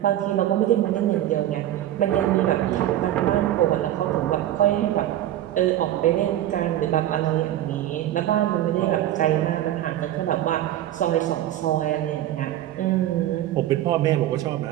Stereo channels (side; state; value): left; quieter; 12.9 dB